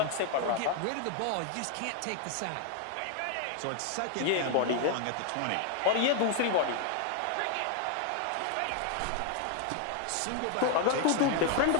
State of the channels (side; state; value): both; different; correlation 0.00